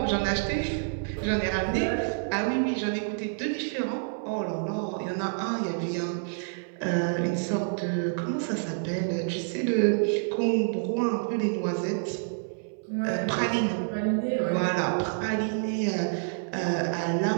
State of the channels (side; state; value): left; silent; 59 dB below the other